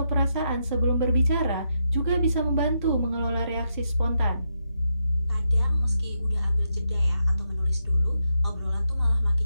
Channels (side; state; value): both; inverted; correlation -0.82